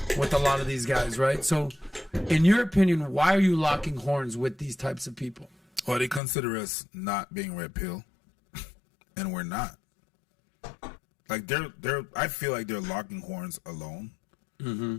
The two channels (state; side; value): drops out; right; at 6.2 s